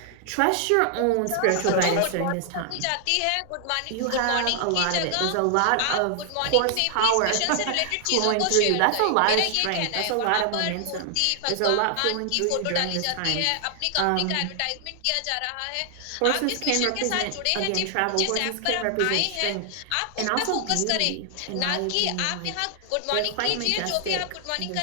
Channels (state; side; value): different; both; correlation 0.00